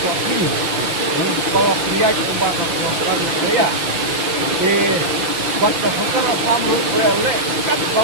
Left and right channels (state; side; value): late; left; 6.0 ms